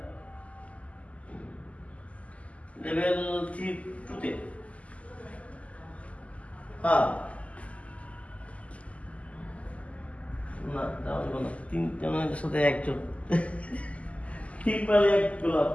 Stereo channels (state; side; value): late; right; 0.066 ms